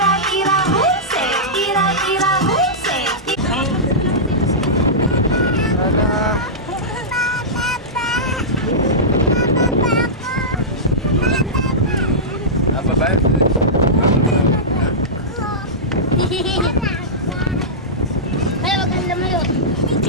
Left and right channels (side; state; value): both; normal; correlation -0.14